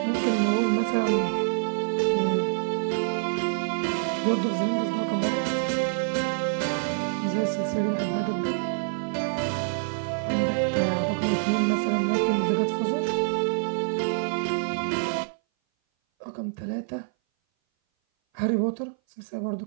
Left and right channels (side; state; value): left; silent; 58 dB below the other